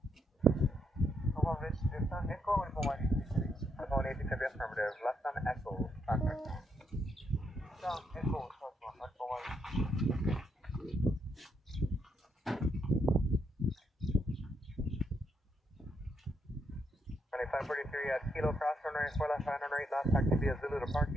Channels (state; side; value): normal; both; correlation 0.78